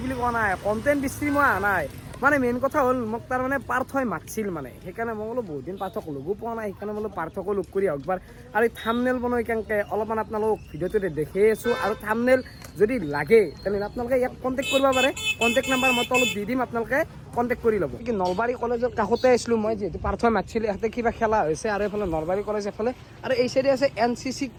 বুলি কোৱা নাই কণ্টেণ্ট বিচাৰি মই অহা নাই মানে মেইন কথা হ'ল মোক তাৰমানে পাৰ্থই মাতিছিল মানে সেইকাৰণে মই বোলো বহুত দিন পাৰ্থক লগো পোৱা নাই সেইকাৰণে বোলো পাৰ্থকো লগ কৰি আহক একবাৰ আৰু থাম্বনেল বনাই কেনেকৈ অলপমান আপোনালোক ভিডিঅ'টোতে দেখি আছোঁ আৰু থাম্বনেল যদি লাগে তেনেহ'লে আপোনালোকে ইয়াক কণ্টেক্ট কৰিব পাৰে কণ্টেক্ট নাম্বাৰ মই তলত দি দিম আপোনালোকে কণ্টেক্ট কৰি ল'ব কি নলবাৰী কলেজৰ কাষতে আছিলোঁ মই যিহেতু পাৰ্থই মাতিছিল ইয়াতে কিবা খেলা হৈছে আৰু এইফালে নলবাৰী কলেজ এফালে আৰু এই চাইডে আছে NCC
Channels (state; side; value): identical; both; correlation 1.00